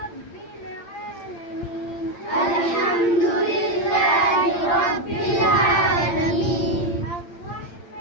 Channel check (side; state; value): right; late; 8.7 ms